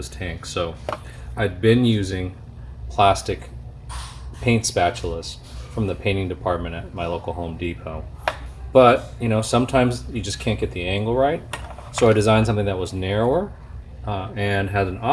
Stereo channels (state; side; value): identical; both; correlation 1.00